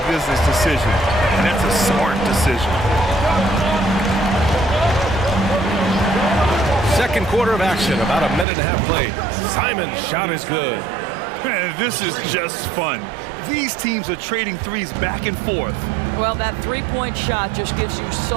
business decision. And that's a smart decision. Second quarter of action, about a minute and a half played. Simon's shot is good. Man, this is just fun. These teams are trading threes back and forth. Well, that three-point shot just gives you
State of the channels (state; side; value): drops out; left; at 8.5 s